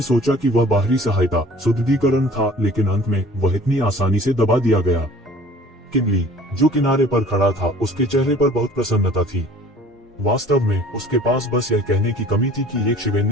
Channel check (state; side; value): normal; both; correlation 0.49